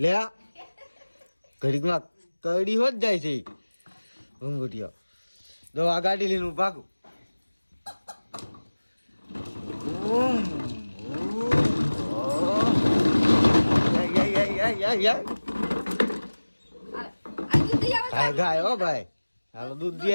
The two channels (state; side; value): inverted; both; correlation -1.00